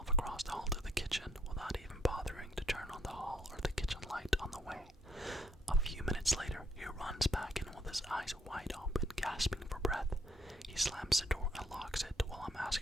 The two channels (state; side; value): normal; both; correlation 0.68